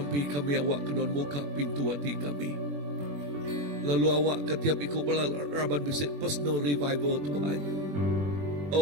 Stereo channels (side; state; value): left; late; 21 ms